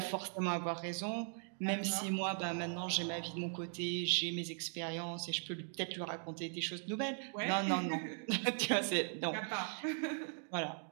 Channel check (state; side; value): silent; left; 52 dB below the other